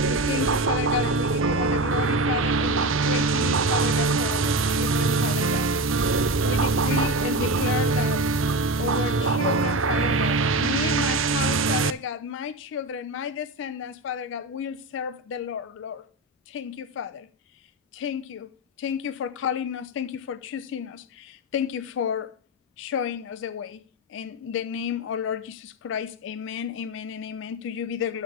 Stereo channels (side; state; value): both; normal; correlation 0.20